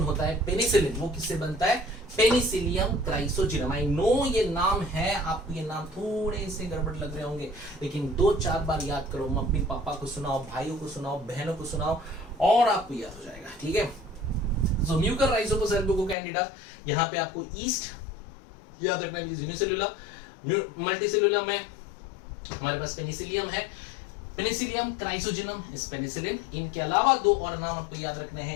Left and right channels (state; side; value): drops out; right; at 16.2 s